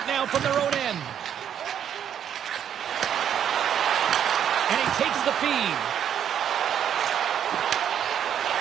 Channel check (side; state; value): left; quieter; 9.2 dB